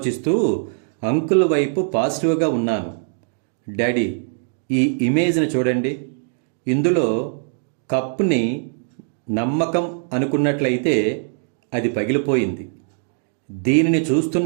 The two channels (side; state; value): left; silent; digital silence